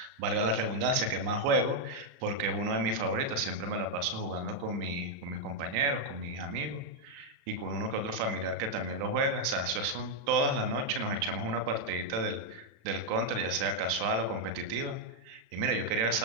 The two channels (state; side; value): late; left; 35 ms